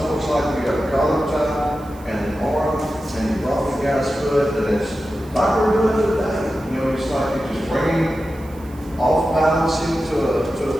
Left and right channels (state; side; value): noise; right; hiss, 25 dB below the sound